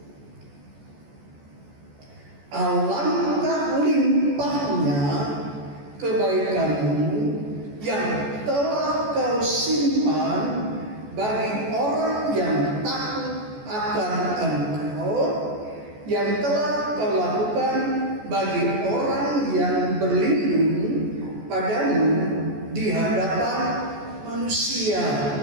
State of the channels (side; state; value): left; late; 14 ms